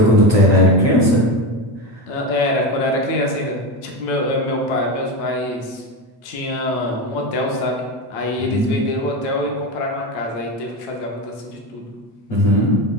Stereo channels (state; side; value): late; right; 8.9 ms